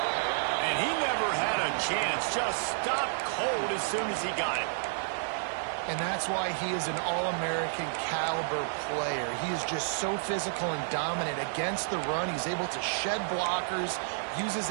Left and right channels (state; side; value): silent; left; digital silence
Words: And he never had a chance, just stopped cold as soon as he got it. And that's why he is an All-American caliber player. He is just so physical and dominant against the run. He's able to shed blockers, use his